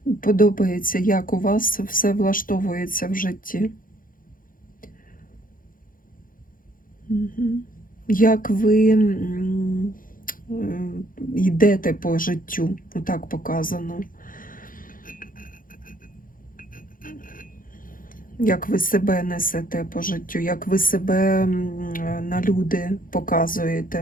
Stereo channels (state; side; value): late; right; 0.40 ms